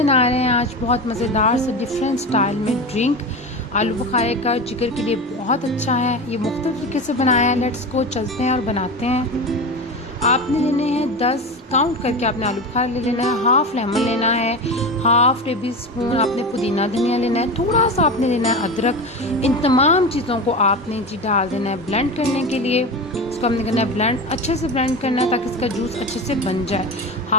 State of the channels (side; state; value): both; normal; correlation 0.25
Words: रहे हैं आज बहुत मज़ेदार से डिफरेंट स्टाइल में ड्रिंक। आलू बुखारे का जिगर के लिए बहुत अच्छा है। ये मुख्तलिफ तरीके से बनाया है। लेट्स को चलते हैं और बनाते हैं। आपने लेने हैं 10 काउंट करके आपने आलू बुखारा ले लेना है। हाफ़ लेमन लेना है, हाफ़ टेबल स्पून आपने पुदीना धनिया लेना है, थोड़ा सा आपने लेना है अदरक। इन तमाम चीज़ों को आपने जी डाल देना है ब्लेंड करने के लिए। इसको हमने करना है ब्लेंड, अच्छे से ब्लेंड करना है ताकि इसका जूस अच्छे से बन जाए।